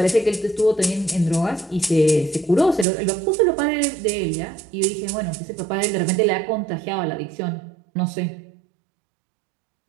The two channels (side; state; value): left; drops out; at 2.9 s